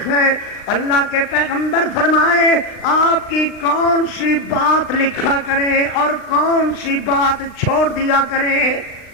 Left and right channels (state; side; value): late; right; 39 ms